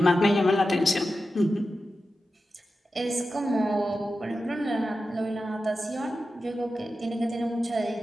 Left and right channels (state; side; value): normal; both; correlation 0.92